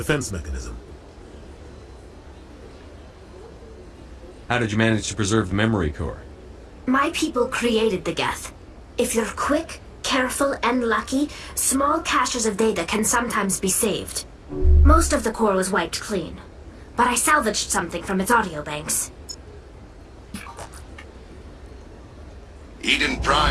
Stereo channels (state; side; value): identical; both; correlation 1.00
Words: mechanism. How did you manage to preserve the memory core? My people created the Geth. If you're quick, careful, and lucky, small caches of data can sometimes be saved. Most of the core was wiped clean, but I salvaged something from its audio banks. Eden